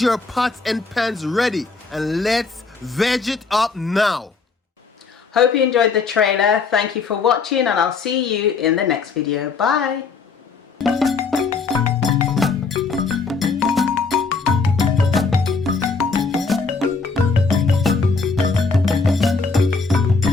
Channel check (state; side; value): quieter; right; 4.6 dB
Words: pots and pans ready and let's veg it up now. Hope you enjoyed the trailer. Thank you for watching, and I'll see you in the next video. Bye.